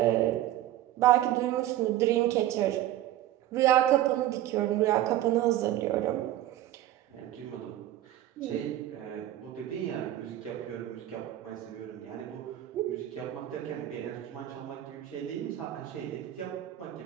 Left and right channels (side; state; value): left; quieter; 13.7 dB